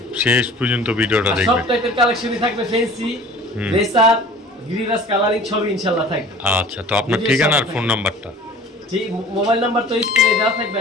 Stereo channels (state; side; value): normal; both; correlation 0.44